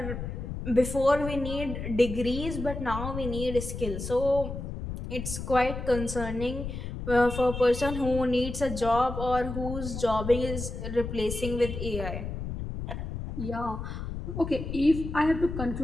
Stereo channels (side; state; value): left; noise; rumble, 6 dB below the sound